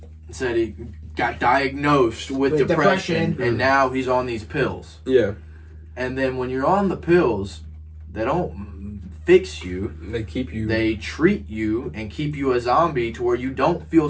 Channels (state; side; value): identical; both; correlation 1.00